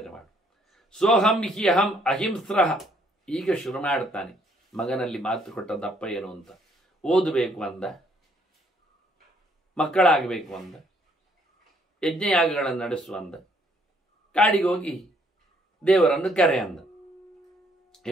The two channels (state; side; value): normal; both; correlation 0.67